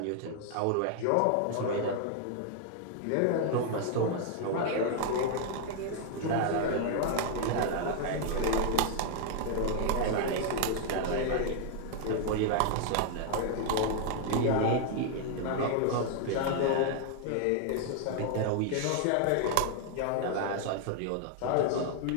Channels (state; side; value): different; both; correlation 0.00